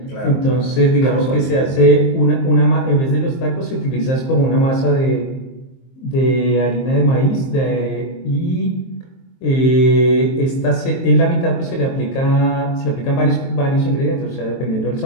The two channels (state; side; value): late; right; 23 ms